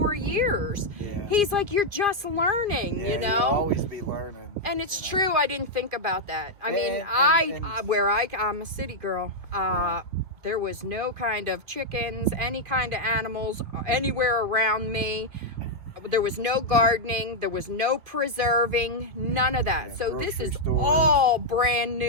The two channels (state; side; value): late; left; 2.4 ms